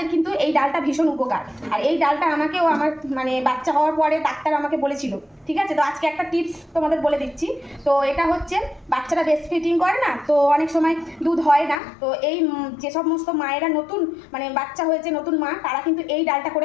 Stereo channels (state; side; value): drops out; right; at 11.8 s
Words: কিন্তু এই ডালটা ভীষণ উপকার। আর এই ডালটা আমাকেও আমার মানে বাচ্চা হওয়ার পরে ডাক্তার আমাকে বলেছিল, ঠিক আছে? তো আজকে একটা টিপস তোমাদের বলে দিচ্ছি। তো এটা হচ্ছে বাচ্চারা ব্রেস্ট ফিডিং করে না, তো অনেক সময় দুধ হয় না। তো এই যে সমস্ত মায়েরা নতুন মানে বাচ্চা হয়েছে, নতুন মা, তারা কিন্তু এই ডালটা